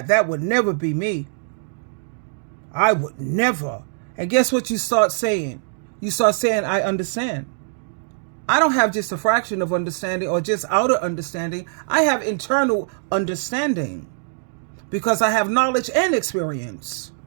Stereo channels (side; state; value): left; silent; digital silence